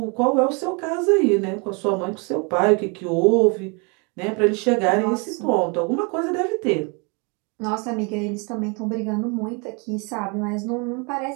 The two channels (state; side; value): quieter; left; 32.5 dB